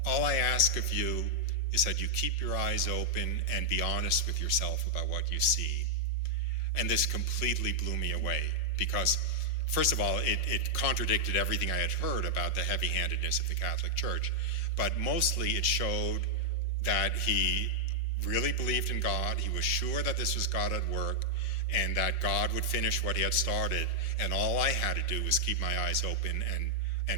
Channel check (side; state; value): right; late; 5.6 ms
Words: All I ask of you is that you keep your eyes open and be honest with yourself about what you see. And this completely blew me away because, first of all, it contradicted everything I had heard about the heavy-handedness of the Catholic Church. But mostly it showed that he really believed in God. He was sure that this was God at work and that God would finish what he had started. And all I had to do was keep my eyes open